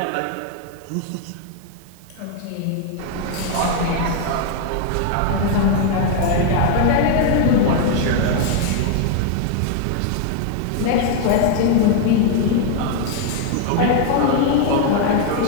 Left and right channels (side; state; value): both; different; correlation 0.00